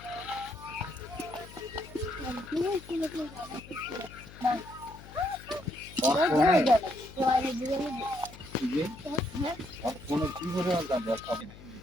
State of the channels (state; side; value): noise; left; hum, 18 dB below the sound